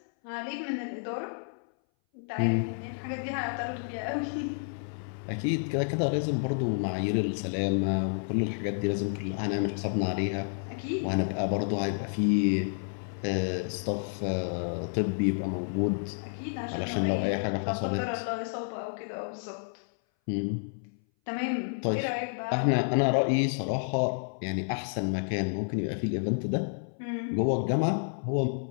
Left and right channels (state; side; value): silent; right; 58 dB below the other